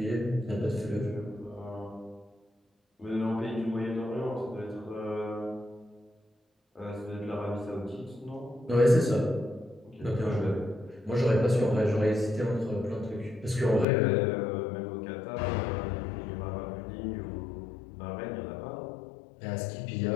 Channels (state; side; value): drops out; right; at 13.9 s